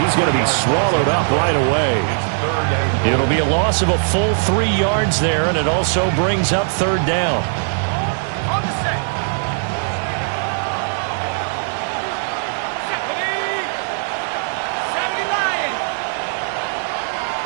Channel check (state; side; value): silent; left; 61 dB below the other